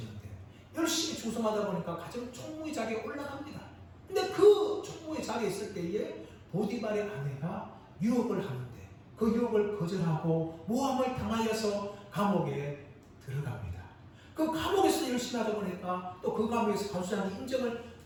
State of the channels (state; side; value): identical; both; correlation 1.00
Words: 열심히 충성하다 보니까 가정 총무의 자리에 올라갑니다. 근데 그 총무의 자리에 있을 때에 보디발의 아내가 유혹을 하는데 그 유혹을 거절하고 모함을 당하여서 감옥에 들어갑니다. 그 감옥에서 열심히 하다 보니까 또 그 감옥에서 간수장의 인정을